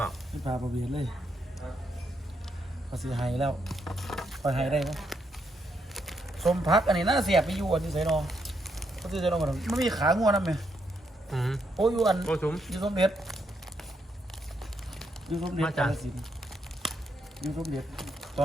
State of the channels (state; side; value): normal; both; correlation 0.78